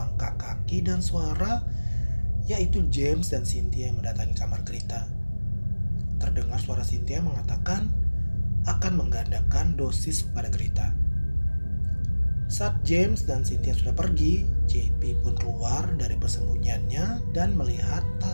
kaki dan suara, yaitu James dan Cynthia yang mendatangi kamar Greta. Terdengar suara Cynthia mengatakan akan menggandakan dosis kepada Greta. Saat James dan Cynthia sudah pergi, JP pun keluar dari persembunyiannya dan melihat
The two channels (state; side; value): inverted; both; correlation -1.00